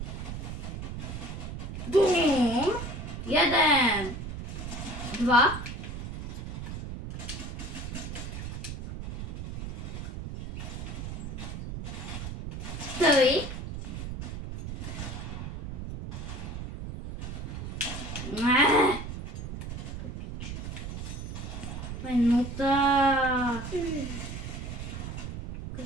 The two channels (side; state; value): right; noise; rumble, 7 dB below the sound